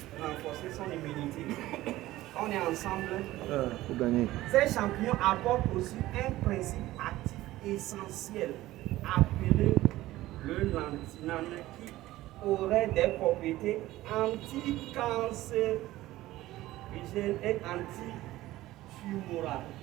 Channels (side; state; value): left; quieter; 16.4 dB